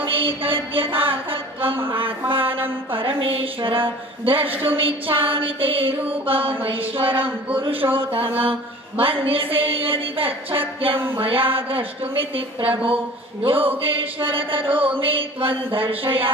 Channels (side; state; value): both; normal; correlation 0.44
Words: आत्मानं परमेश्वर द्रष्टुमिच्छामि ते रूपमैश्वरं पुरुषोत्तम मन्यसे यदि तच्छक्यं मया द्रष्टुमिति प्रभो योगेश्वर ततो मे त्वं